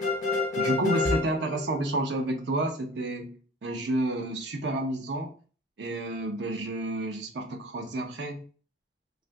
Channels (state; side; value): normal; both; correlation 0.43